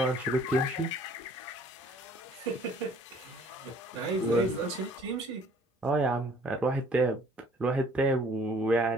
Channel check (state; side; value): normal; both; correlation 0.56